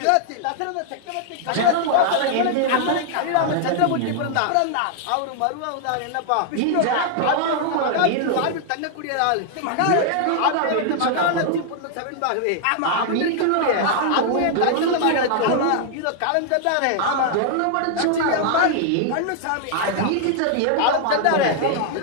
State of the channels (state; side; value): different; both; correlation -0.01